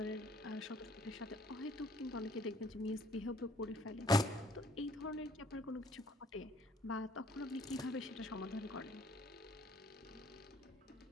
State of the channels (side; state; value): both; normal; correlation 0.60